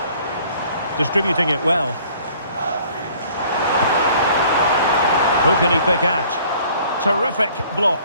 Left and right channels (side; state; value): both; inverted; correlation -0.55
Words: Distributing it well. Who can he pick out? Terrific block.